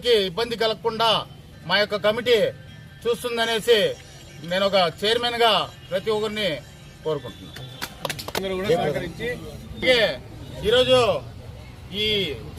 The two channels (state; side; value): identical; both; correlation 1.00